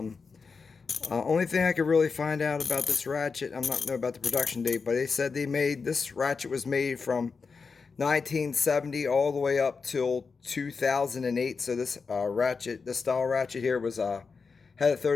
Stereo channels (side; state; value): right; quieter; 4.9 dB